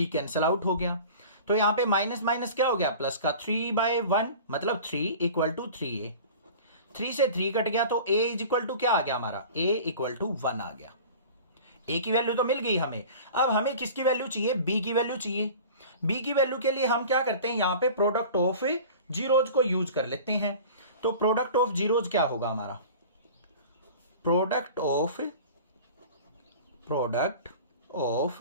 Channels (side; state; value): both; inverted; correlation -0.40